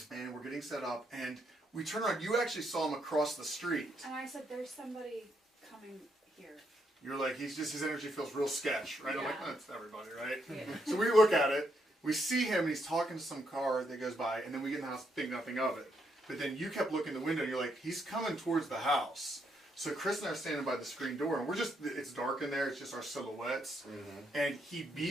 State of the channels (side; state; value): both; normal; correlation 0.77